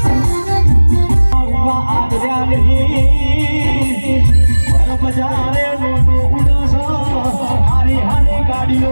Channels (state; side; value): inverted; both; correlation -1.00